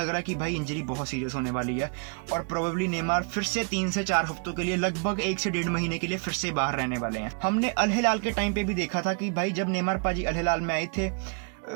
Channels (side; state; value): left; quieter; 38.2 dB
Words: रहा है कि भाई इंजरी बहुत सीरियस होने वाली है और प्रोबेबली नेमार फिर से 3 से 4 हफ्तों के लिए, लगभग 1 से 1.5 महीने के लिए फिर से बाहर रहने वाले हैं। हमने अल हिलाल के टाइम पे भी देखा था कि भाई जब नेमार पाजी अल हिलाल में आए थे,